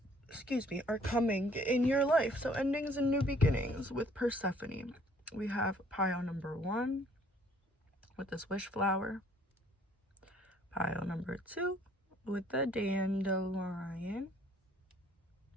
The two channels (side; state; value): both; normal; correlation 0.60